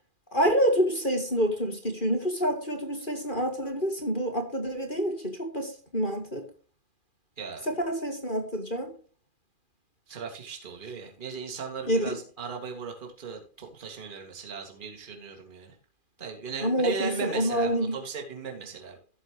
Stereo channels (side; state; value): right; late; 2.4 ms